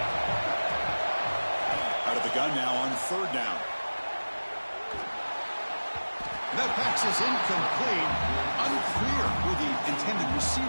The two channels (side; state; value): both; inverted; correlation -1.00